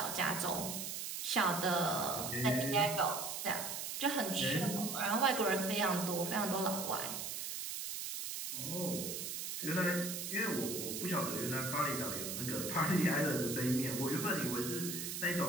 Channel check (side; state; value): right; noise; hiss, 4 dB below the sound